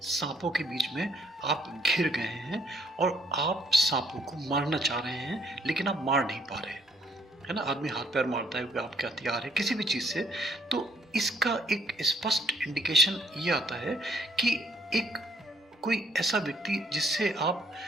सांपों के बीच में आप घिर गए हैं और आप सांपों को मारना चाह रहे हैं लेकिन आप मार नहीं पा रहे, है ना। आदमी हाथ पैर मारता है, आपके हथियार है किसी भी चीज़ से, तो इसका एक स्पष्ट इंडिकेशन ये आता है कि एक कोई ऐसा व्यक्ति जिससे आप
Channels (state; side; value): normal; both; correlation 0.66